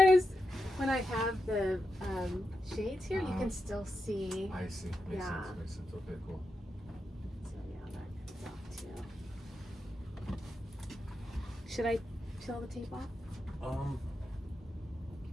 when I have the shades here, you can still see. I see. Makes Yeah. sense. Makes sense. Okay, cool. So yeah, that comes off too. Should I peel the tape off?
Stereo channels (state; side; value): normal; both; correlation 0.87